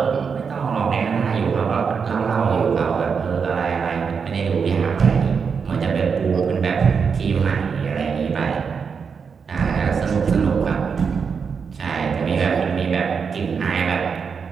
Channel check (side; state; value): left; quieter; 6.0 dB